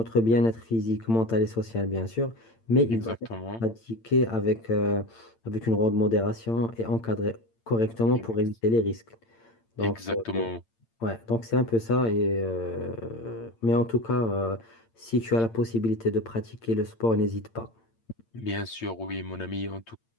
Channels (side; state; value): right; late; 8.8 ms